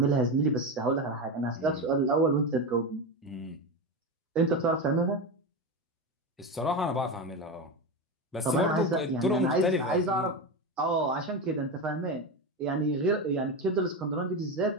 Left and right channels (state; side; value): normal; both; correlation 0.18